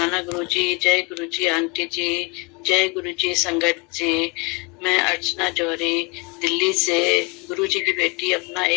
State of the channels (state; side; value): quieter; right; 29.3 dB